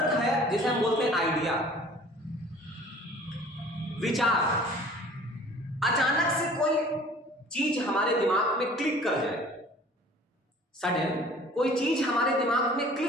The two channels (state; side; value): normal; both; correlation 0.49